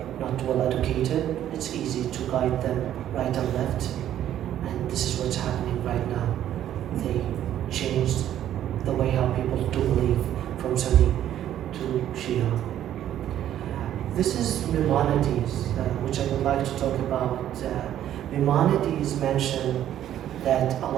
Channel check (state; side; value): quieter; left; 11.4 dB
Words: not well educated. It's easy to guide them right and left. And this is what's happening right now. They changed the way how people do believe from Sunni to Shia. This is Maimonides, which I would like to talk about. Maimonides mentioned that a